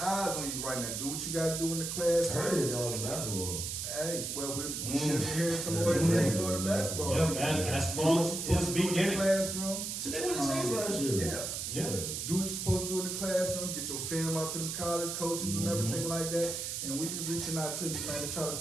eyes on you right now. Do what you got to do in the class. I heard it, dog, in basketball. Hey, well, we should be hearing some more information on the basketball. Yeah, basketball is beginning. Classroom. So they won the states last year. Yeah. Do what you're supposed to do in the classroom. Get your film out to the college coaches and everything like that. And we be reaching out to you, man, to try to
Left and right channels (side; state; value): right; noise; hiss, 4 dB below the sound